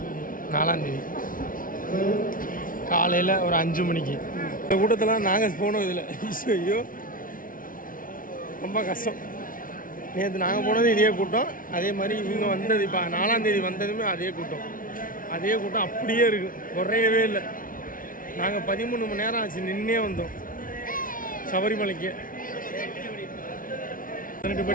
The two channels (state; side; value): late; right; 0.39 ms